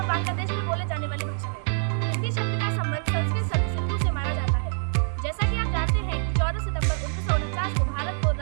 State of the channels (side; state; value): left; silent; 61 dB below the other